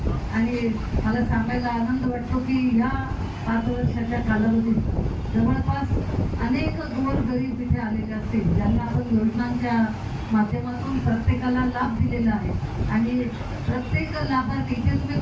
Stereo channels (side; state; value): both; identical; correlation 1.00